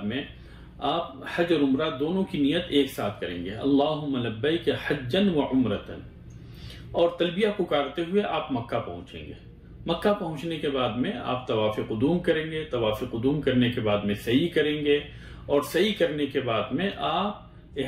में आप हज और उम्रा दोनों की नियत एक साथ करेंगे। अल्लाहुम्मा लब्बैक हज्जन व उम्रतन, और तलबिया पुकारते हुए आप मक्का पहुंचेंगे। मक्का पहुंचने के बाद में आप तवाफ़ क़ुदूम करेंगे। तवाफ़ क़ुदूम करने के बाद में सही करेंगे, और सही करने के बाद में आप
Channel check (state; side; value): identical; both; correlation 1.00